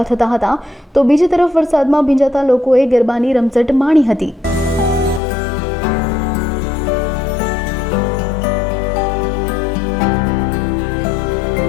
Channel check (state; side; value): drops out; right; at 5.2 s